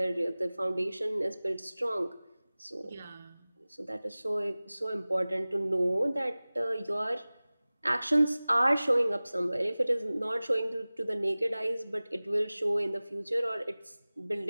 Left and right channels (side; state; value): both; inverted; correlation -0.99